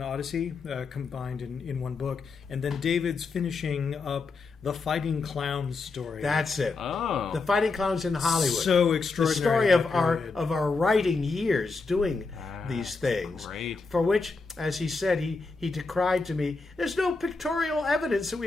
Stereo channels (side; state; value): right; quieter; 4.1 dB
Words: Odyssey, combined in one book. And then David's finishing up the Fighting Clowns story. That's it. Oh. The Fighting Clowns in Hollywood. So The extraordinary. story of our writing years doing these things. Great. For which, as he said, he decried to me, there's no pictorial evidence that